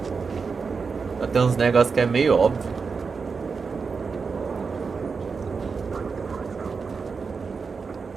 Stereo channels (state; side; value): quieter; left; 5.1 dB